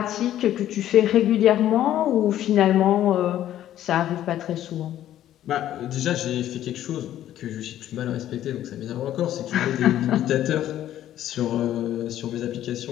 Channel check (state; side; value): quieter; right; 12.2 dB